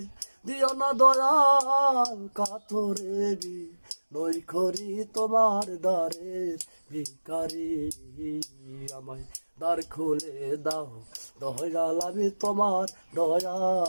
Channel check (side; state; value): both; inverted; correlation -1.00